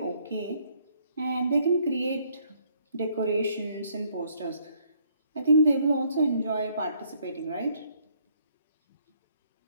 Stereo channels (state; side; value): inverted; both; correlation -0.67